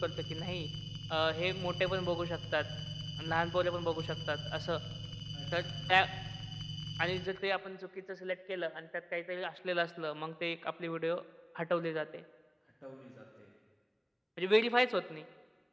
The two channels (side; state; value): both; identical; correlation 1.00